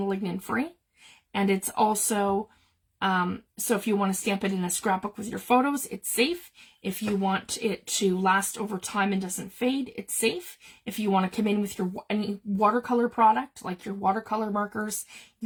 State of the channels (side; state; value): both; identical; correlation 1.00